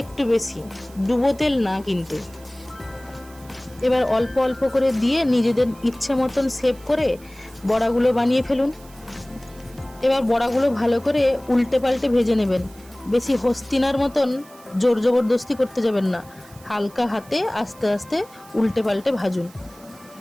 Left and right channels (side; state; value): right; noise; hiss, 24 dB below the sound